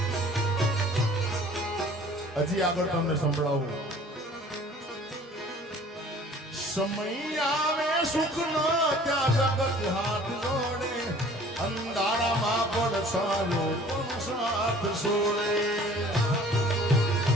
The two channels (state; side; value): normal; both; correlation 0.50